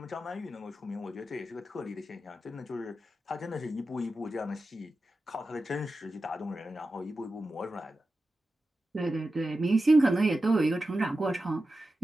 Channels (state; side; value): normal; both; correlation 0.92